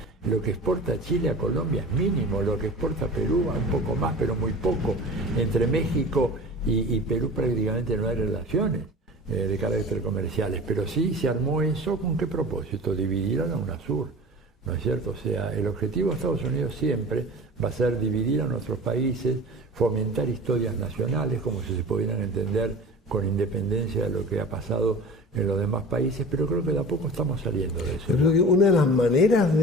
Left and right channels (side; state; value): both; normal; correlation 0.37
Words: Lo que exporta Chile a Colombia es mínimo, lo que exporta Perú un poco más, pero muy poco. Entre México y Perú prácticamente no hay relaciones de carácter comerciales, pero sí se armó eso. ¿Con qué propósito? Dividir a la UNASUR, ¿no es cierto? O sea, el objetivo de Estados Unidos siempre va a ser dividir a nuestros países, fomentar historias nacionales, como si se pudieran entender con independencia de lo que ha pasado en los demás países, pero creo que de a poco estamos saliendo de eso. Yo creo que una de las maneras